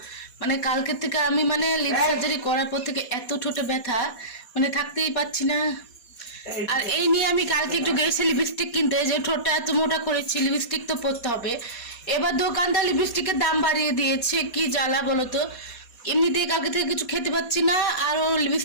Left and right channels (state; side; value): late; right; 4.2 ms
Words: মানে কালকে থেকে আমি মানে লিপ সার্জারি করার পর থেকে এত ঠোঁটে ব্যথা, মানে থাকতেই পাচ্ছি না। আর এই নিয়ে আমি কালকে একটু গেছি লিপস্টিক কিনতে, যে ঠোঁটটা এত মোটা করেছি লিপস্টিক তো পরতে হবে। এবার দোকানদার লিপস্টিকের দাম বাড়িয়ে দিয়েছে, কি জ্বালা বলো তো। এমনিতেই কালকে থেকে কিছু খেতে পাচ্ছি না, আরও